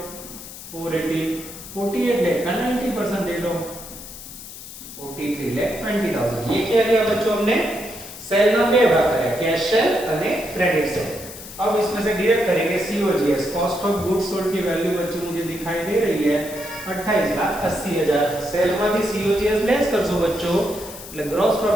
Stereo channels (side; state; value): left; noise; hiss, 14 dB below the sound